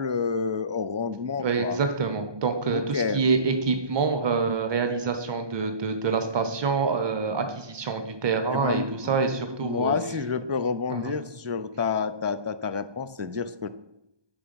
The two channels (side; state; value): left; late; 1.2 ms